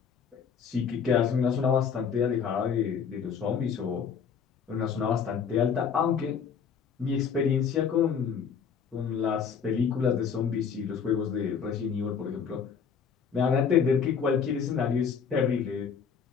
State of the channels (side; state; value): right; quieter; 6.8 dB